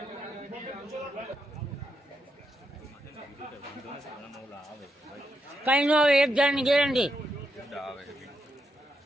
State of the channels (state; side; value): normal; both; correlation 0.81